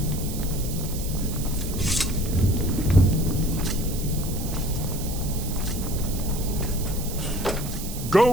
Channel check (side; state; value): right; noise; hiss, 10 dB below the sound